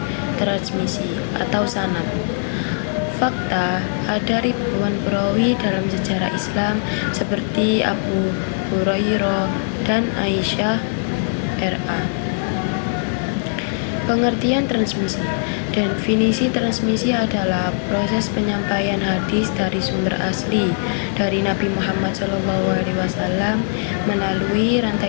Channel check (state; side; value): silent; right; digital silence